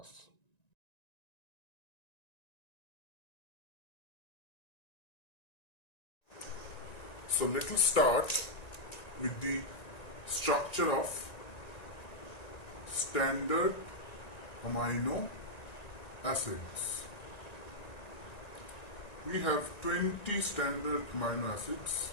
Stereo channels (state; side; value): late; right; 1.9 ms